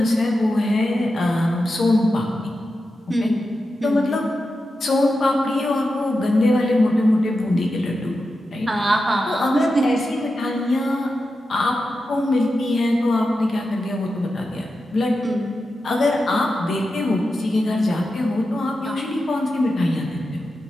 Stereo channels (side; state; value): both; normal; correlation 0.90